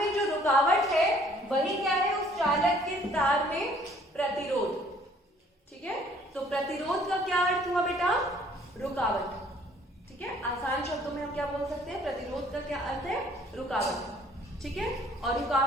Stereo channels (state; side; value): normal; both; correlation 0.58